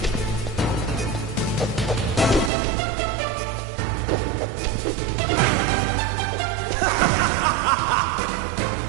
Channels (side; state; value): left; drops out; at 2.5 s